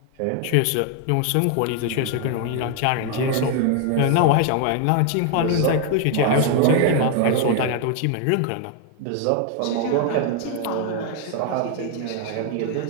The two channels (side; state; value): both; different; correlation 0.01